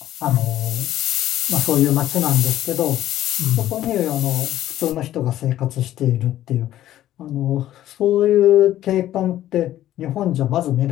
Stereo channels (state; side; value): quieter; right; 13.1 dB